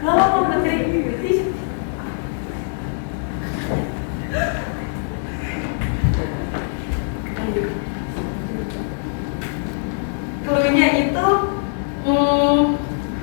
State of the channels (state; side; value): silent; right; digital silence